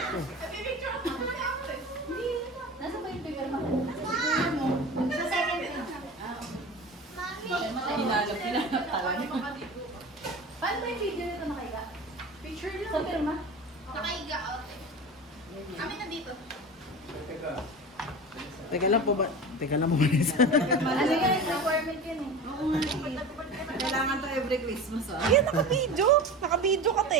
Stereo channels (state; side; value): normal; both; correlation 0.32